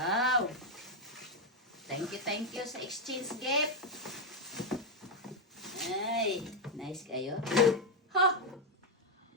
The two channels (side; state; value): both; normal; correlation 0.02